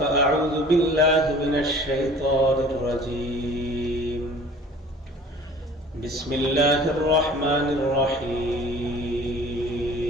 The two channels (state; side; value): normal; both; correlation 0.48